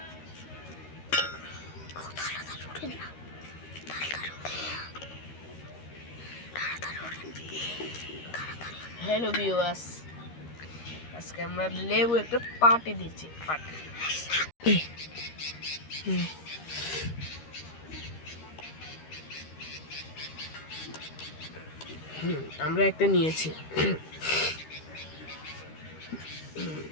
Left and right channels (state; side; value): late; right; 13 ms